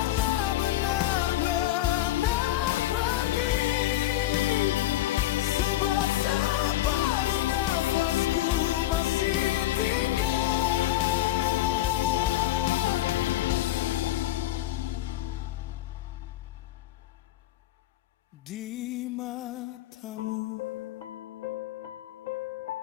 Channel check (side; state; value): right; quieter; 14.5 dB